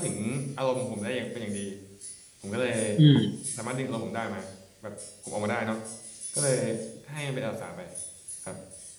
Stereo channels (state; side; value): identical; both; correlation 1.00